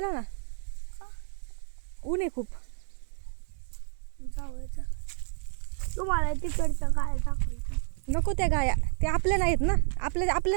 ना. का? ऊन आहे खूप. जाऊया. तुम्हाला तिकडचं काय दाखवायचं? नको त्या गाया, ते आपल्या नाहीत ना.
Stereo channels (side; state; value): left; silent; 58 dB below the other